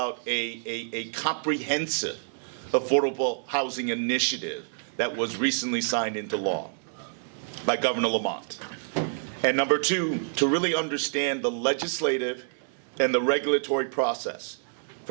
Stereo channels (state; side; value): silent; left; 60 dB below the other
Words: a comprehensive affordable housing initiative that was recently signed into law by Governor Lamont. And number two, to really understand the legislative and the regulatory process.